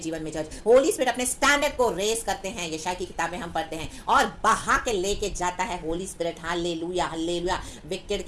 में चर्च, होली स्पिरिट अपने स्टैंडर्ड को रेस करते हैं, यशाया की किताबें हम पढ़ते हैं, और बहा के लेके जाता है Holi spirit. Hallelujah, hallelujah. Wicket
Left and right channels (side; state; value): both; identical; correlation 1.00